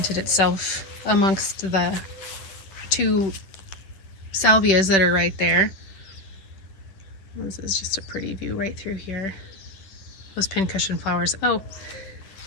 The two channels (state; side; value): late; right; 10 ms